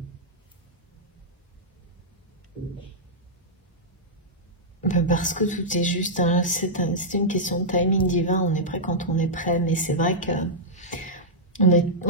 parce que tout est juste, hein, c'est une question de timing divin, on est prêt quand on est prêt, mais c'est vrai que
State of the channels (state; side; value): normal; both; correlation -0.10